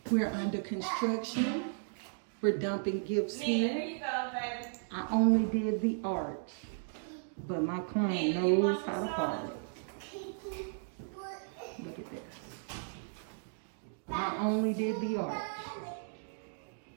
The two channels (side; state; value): left; silent; digital silence